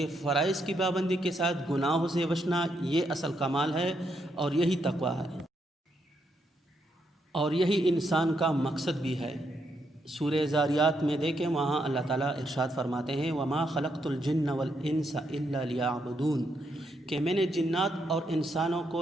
فرائض کی پابندی کے ساتھ گناہوں سے بچنا یہ اصل کمال ہے، اور یہی تقوی ہے، اور یہی انسان کا مقصد بھی ہے۔ سورہ زاریات میں دیکھیں، وہاں اللہ تعالیٰ ارشاد فرماتے ہیں: وَمَا خَلَقْتُ الْجِنَّ وَالْإِنسَ إِلَّا لِيَعْبُدُونَ، کہ میں نے جنات اور انسانوں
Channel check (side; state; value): both; normal; correlation 0.78